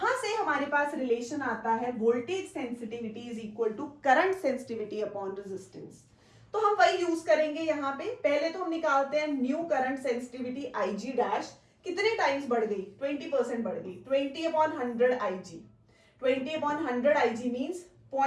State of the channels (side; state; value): both; identical; correlation 1.00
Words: से हमारे पास रिलेशन आता है voltage sensitivity is equal to current sensitivity upon resistance, तो हम वही यूज करेंगे यहाँ पे। पहले तो हम निकालते हैं new current sensitivity IG dash, कितने टाइम्स बढ़ गई, 20% बढ़ गई, 20/100 IG, 20/100 IG मीन्स